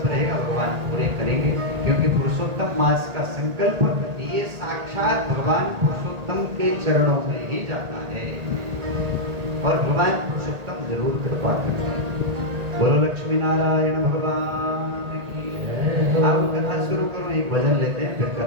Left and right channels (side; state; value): left; late; 1.8 ms